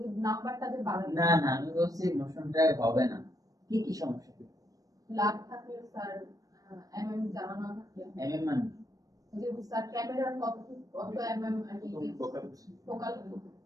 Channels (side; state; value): left; late; 0.17 ms